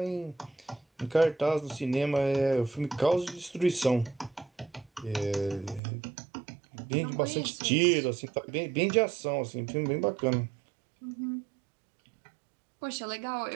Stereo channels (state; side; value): drops out; left; at 5.8 s